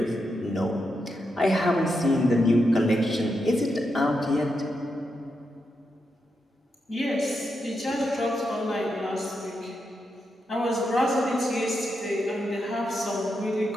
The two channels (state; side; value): normal; both; correlation 0.85